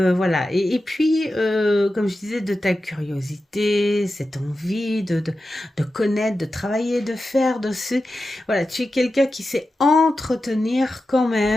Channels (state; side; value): normal; both; correlation 0.92